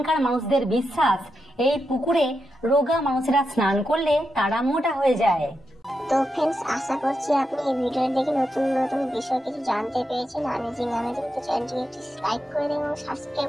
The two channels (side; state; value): both; normal; correlation 0.86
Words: মানুষদের বিশ্বাস এই পুকুরে রোগা মানুষেরা স্নান করলে তারা মোটা হয়ে যায়। তো फ्रेंड्स আশা করছি আপনি এই ভিডিও দেখে নতুন নতুন বিষয় কিছু জানতে পেরেছেন। অ্যামেজিং তো চ্যানেলটিকে একটু লাইক করে দিন এবং